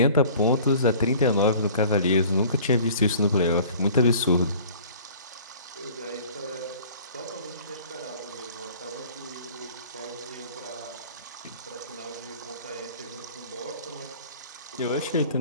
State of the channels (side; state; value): both; inverted; correlation -0.48